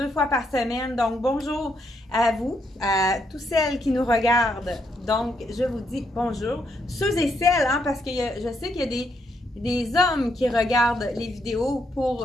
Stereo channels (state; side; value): normal; both; correlation 0.76